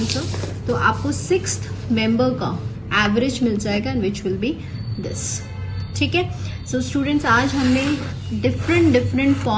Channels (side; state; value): both; identical; correlation 1.00